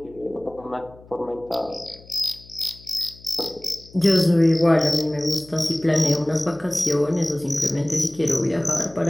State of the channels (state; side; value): noise; left; hum, 23 dB below the sound